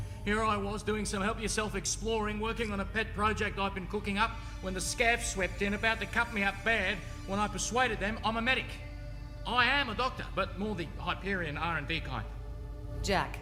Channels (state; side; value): identical; both; correlation 1.00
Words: Here I was doing some help-yourself exploring, working on a pet project I've been cooking up, when the scavs swept in, about to cut me up bad, when I persuaded them I'm a medic. I am a doctor, but more the Hyperion R&D kind. Jack,